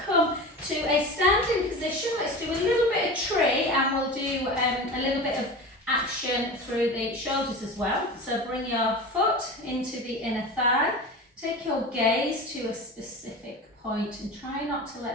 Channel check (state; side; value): normal; both; correlation 0.30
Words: come to a standing position. Let's do a little bit of tree, and we'll do a little bit of action through the shoulders as well. So bring your foot into the inner thigh. Take your gaze to a specific point and try not to